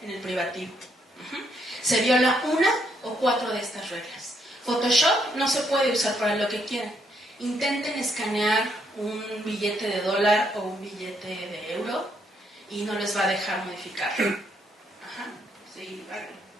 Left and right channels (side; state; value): both; normal; correlation 0.74